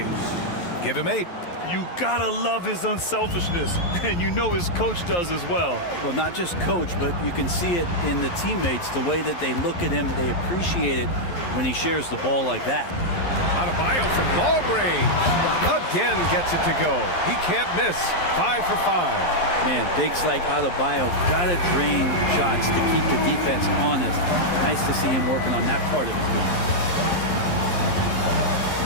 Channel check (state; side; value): late; right; 11 ms